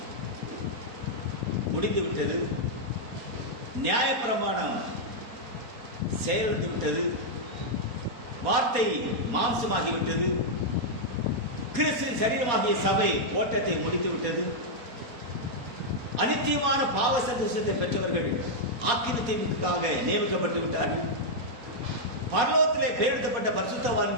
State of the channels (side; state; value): left; late; 4.2 ms